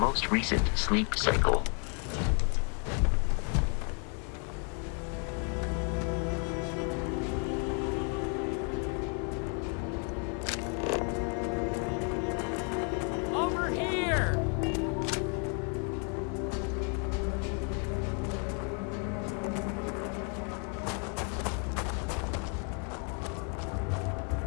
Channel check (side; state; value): right; quieter; 39.2 dB